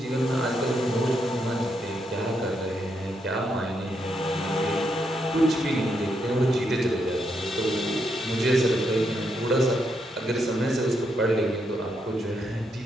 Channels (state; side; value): normal; both; correlation 0.79